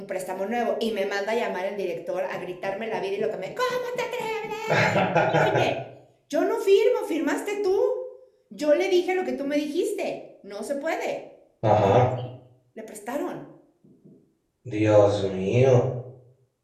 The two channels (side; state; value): both; identical; correlation 1.00